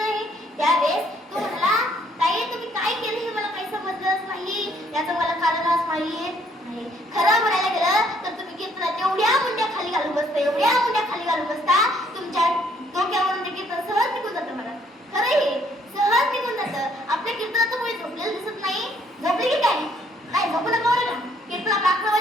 त्यावेळेस तो म्हणाला ताई तुम्ही काय केलं हे मला काही समजलंच नाही, याचं मला कारणच माहित नाही. खरं म्हणायला गेलं तर तुम्ही कीर्तनात एवढ्या मुंड्या खाली घालून बसता, एवढ्या मुंड्या खाली घालून बसता, तुमच्या डोक्यावरून ते कीर्तन सहज निघून जातं. मला खरं हे सहज निघून जातं. आपल्या कीर्तनाचं मुळे झोपलेलं दिसत नाही. झोपले की काय? नाही झोपू नका बरं का. कीर्तन आपलं 11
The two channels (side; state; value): both; normal; correlation 0.66